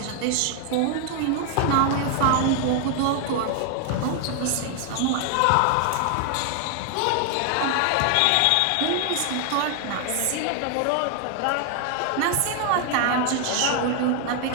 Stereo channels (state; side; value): different; both; correlation 0.00